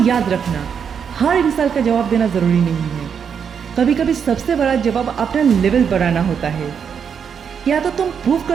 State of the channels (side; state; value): left; quieter; 7.2 dB